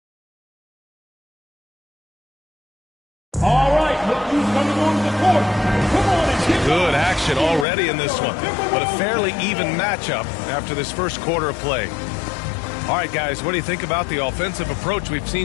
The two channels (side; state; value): right; drops out; at 7.7 s